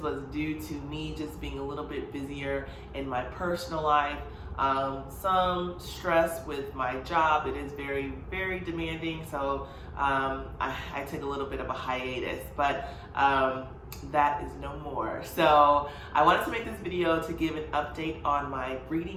was due to me just being a little bit busier in my personal life. Some stress with my job. It is very, very demanding, so I took a little bit of a hiatus, but that is no more. So I wanted to make this video to give an update on my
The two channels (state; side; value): identical; both; correlation 1.00